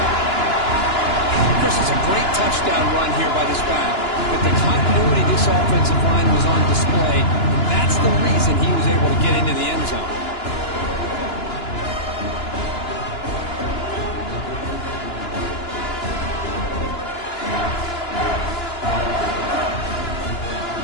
Chris, it's a great touchdown run here by this back. But the continuity this offensive line was on display. And that's the reason he was able to get into the end zone.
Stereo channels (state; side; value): late; right; 2.9 ms